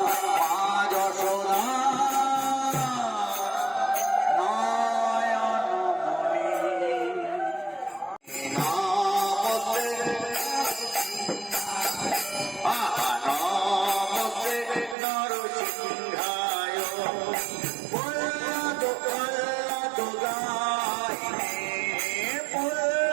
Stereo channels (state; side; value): drops out; left; at 15.0 s